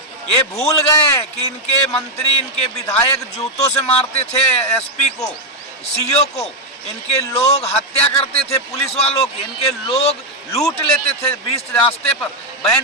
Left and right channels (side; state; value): both; normal; correlation 0.02